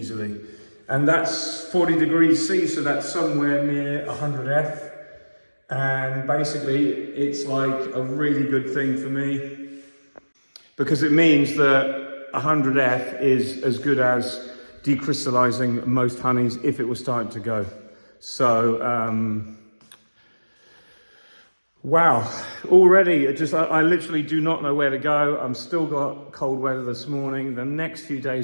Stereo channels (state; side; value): inverted; both; correlation -1.00